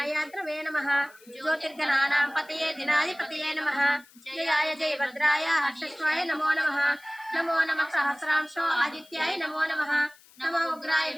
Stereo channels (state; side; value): noise; left; hiss, 26 dB below the sound